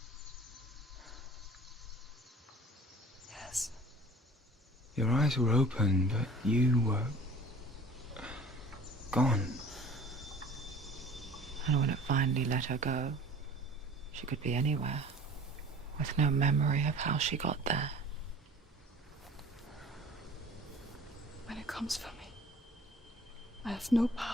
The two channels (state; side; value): normal; both; correlation 0.46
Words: Yes. Your eyes were open, but you were gone. And when it finally let her go, she could be anywhere, with no memory of how she got there. When it comes for me, I have no